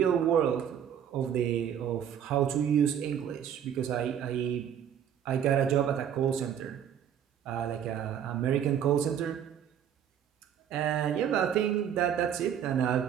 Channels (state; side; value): quieter; left; 9.1 dB